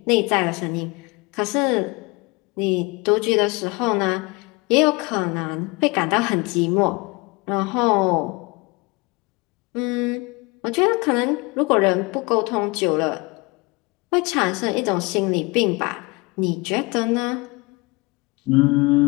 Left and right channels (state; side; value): quieter; right; 26.1 dB